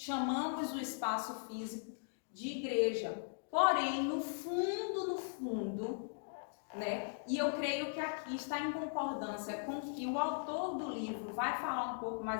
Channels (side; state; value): right; silent; digital silence